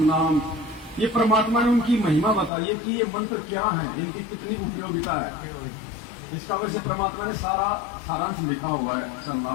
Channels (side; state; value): right; drops out; at 2.5 s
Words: नाम, ये परमात्मा ने उनकी महिमा बताई है कि ये मंत्र क्या है, इनकी कितनी उपयोगिता है। इसका वजह से परमात्मा ने सारा सारांश लिखा हुआ है